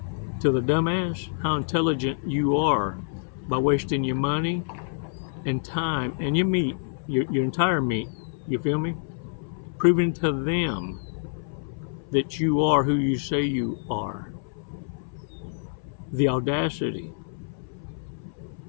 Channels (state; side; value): silent; right; 59 dB below the other